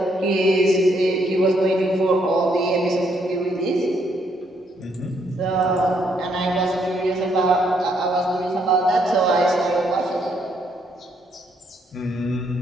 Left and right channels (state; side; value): normal; both; correlation 0.72